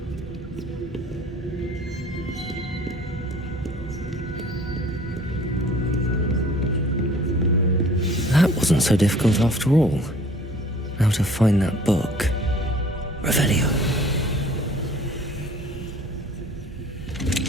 That wasn't so difficult after all. Now to find that book. Revelio.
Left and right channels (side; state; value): both; normal; correlation 0.51